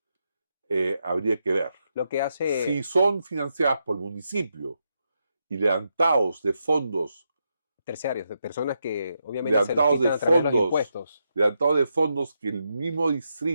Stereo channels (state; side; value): inverted; both; correlation -0.83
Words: habría que ver. Lo que hace... Si son financiadas por el municipio y levantados de fondos, terciarios, de personas que obviamente se los levantados quitan de a través de los fondos, impuestos. levantados de fondos que el mismo